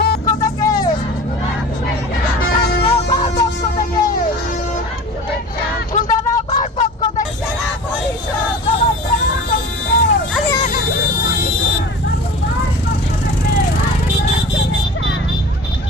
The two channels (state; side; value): normal; both; correlation 0.38